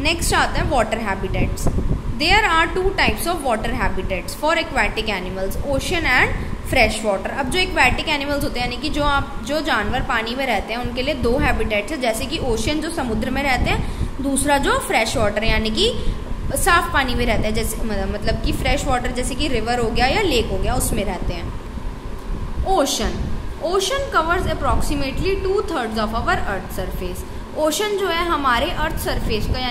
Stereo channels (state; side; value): identical; both; correlation 1.00